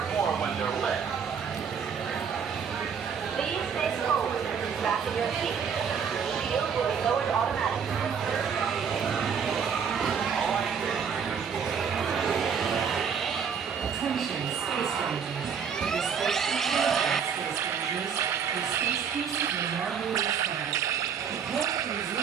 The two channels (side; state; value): left; quieter; 6.9 dB